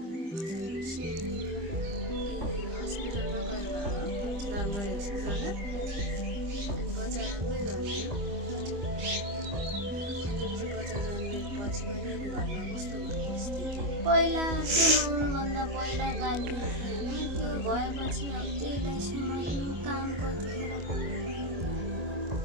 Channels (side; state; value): left; late; 25 ms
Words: हस्पिटलमा गएर भयो धनगढी हस्पिटलमा अनि बच्चा राम्रै जन्मियो अनि त्यसपछि बच्चा जन्मिएपछि पनि घरमा कस्तो भयो स्थिति पहिला त्यो नहुनुभन्दा पहिला गाली होइन त्यो भएपछि अब त्यहीलाई समात्नु काम कतिखेर